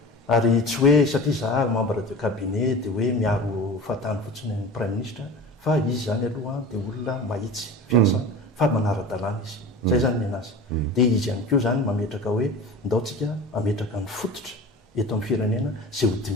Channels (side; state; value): both; normal; correlation 0.35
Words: ary tsy hoe satria za membre de cabinet dia hoe miaro fahatany fotsiny ny prime ministre fa izy zany aloha dia olona mahitsy fiasa fa manara-dalàna izy zay zany ny anazy dia izy ihany koa zany mametraka hoe ndaotsika ametraka ny fototra eto amin'ny firenena zay ho